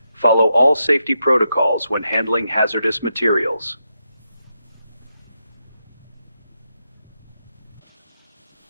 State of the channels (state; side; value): inverted; both; correlation -0.84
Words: follow all safety protocols when handling hazardous materials.